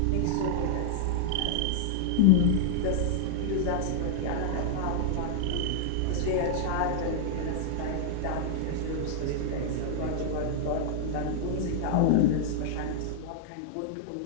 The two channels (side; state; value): both; different; correlation -0.01